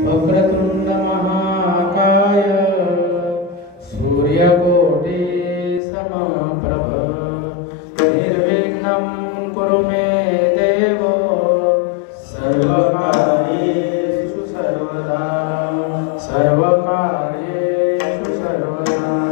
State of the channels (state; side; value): drops out; right; at 5.8 s